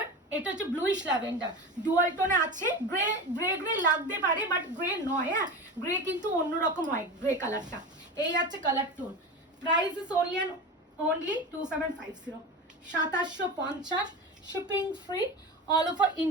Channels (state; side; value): normal; both; correlation 0.27